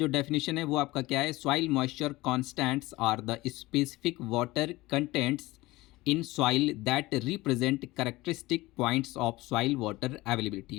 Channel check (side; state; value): right; quieter; 19.7 dB